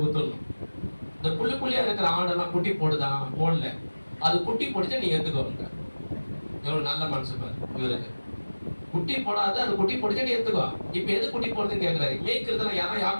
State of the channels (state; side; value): inverted; both; correlation -1.00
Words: குத்துடணும். இந்த புள்ளியா இருக்கிற ஆடெல்லாம் குட்டி போடுதா? போடல. அது குட்டி போடுச்சு, நீ எடுத்துக்கோங்க. எவ்வளவு நல்ல மனசு பாரு இவருக்கு. குட்டி போடாது, அது குட்டி போடுச்சு, நீ எடுத்துக்கோ. இப்ப எது குட்டி போடுதுன்னு கேட்கிறாரு. மேய்க்கிறதுல யாரா?